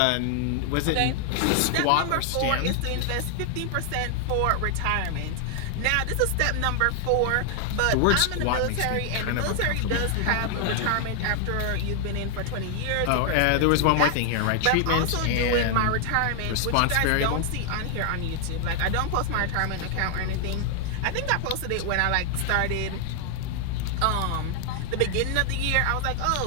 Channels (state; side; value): different; both; correlation 0.00